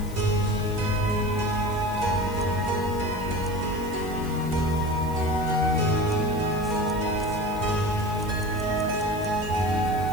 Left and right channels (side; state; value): left; noise; hiss, 19 dB below the sound